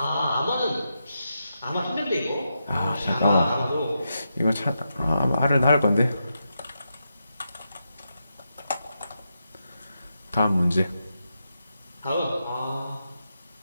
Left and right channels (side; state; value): both; inverted; correlation -0.85